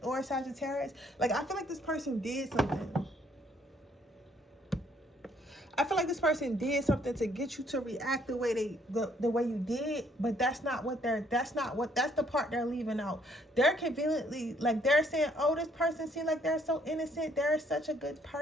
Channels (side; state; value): both; normal; correlation 0.66